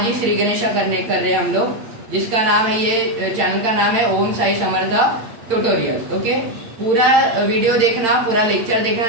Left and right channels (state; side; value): late; left; 8.9 ms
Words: ही श्री गणेशा कर रहे हैं हम लोग, जिसका नाम है, ये चैनल का नाम है ओम साई समर्थ ट्यूटोरियल। ओके, पूरा वीडियो देखना, पूरा लेक्चर